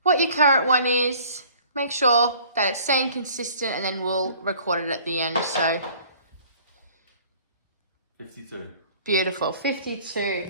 what your current one is, make sure that it's staying consistent, and then we'll record it at the end. So 52. Beautiful.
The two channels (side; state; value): both; inverted; correlation -0.52